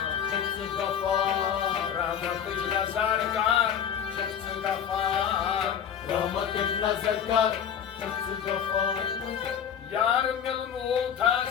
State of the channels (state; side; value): quieter; right; 8.4 dB